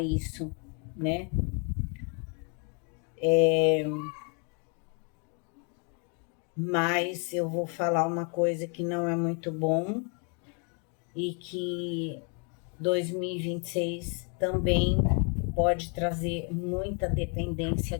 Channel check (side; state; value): right; quieter; 37.9 dB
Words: isso, né? Mas eu vou falar uma coisa que não é muito bom e que 2026 também pode trazer muita dependência